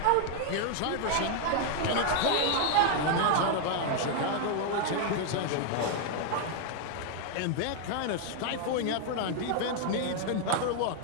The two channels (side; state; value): both; different; correlation 0.00